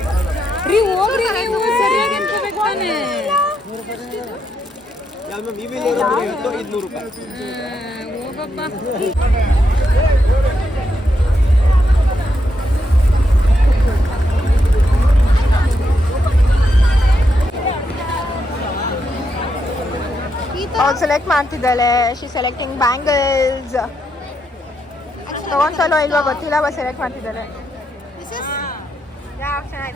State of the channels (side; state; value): both; normal; correlation 0.81